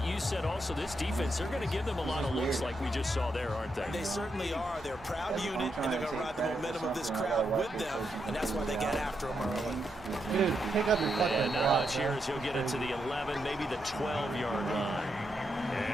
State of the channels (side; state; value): both; normal; correlation 0.82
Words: you said also this defense, they're going to give them a lot of looks like we just saw there, aren't they? They certainly are. They're a proud That's what I'm unit, and trying they're to going to take ride the credit for momentum of this something. I crowd gotta watch with this them, person and that's why they completely get out. after them early. Dude, pick up your fucking And now block, it's bro. here as he'll get it to the 11, maybe the 12-yard line.